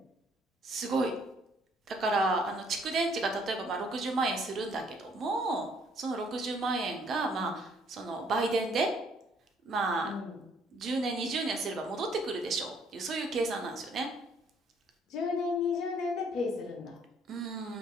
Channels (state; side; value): normal; both; correlation 0.64